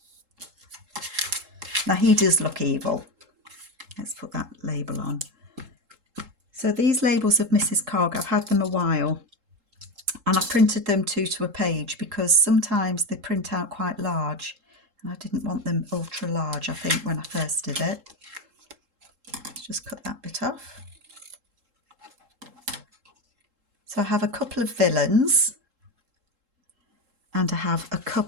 Now he does look evil. Let's put that label on. So these labels of Mrs. Cogg, I've had them a while, And I printed them 2 to a page because sometimes they print out quite large and I didn't want them ultra large, I think, when I first did it. Let's just cut that bit off. So I have a couple of villains and I have a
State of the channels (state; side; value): late; left; 3.7 ms